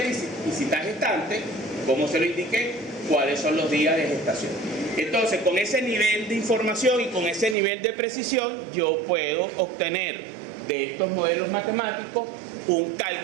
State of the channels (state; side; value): drops out; left; at 7.6 s